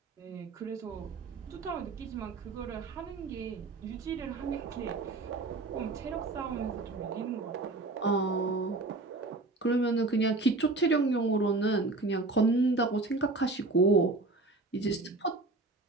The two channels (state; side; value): quieter; left; 3.3 dB